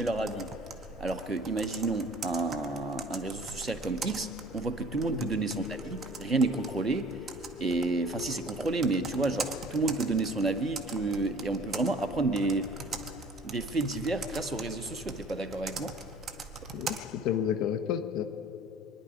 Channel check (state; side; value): normal; both; correlation 0.50